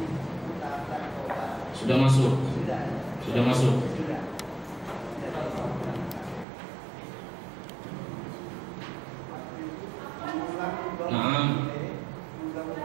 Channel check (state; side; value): drops out; left; at 6.5 s